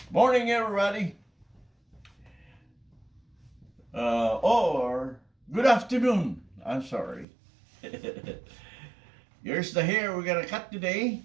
Morning, everybody. Or good afternoon. I'm sorry. Here's the hair we're gonna cut today.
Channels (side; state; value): left; drops out; at 7.2 s